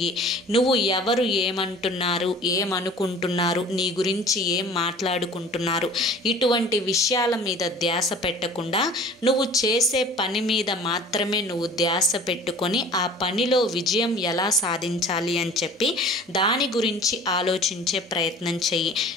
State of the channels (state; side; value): normal; both; correlation 0.44